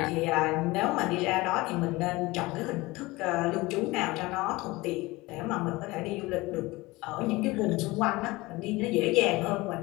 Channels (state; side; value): quieter; right; 21.4 dB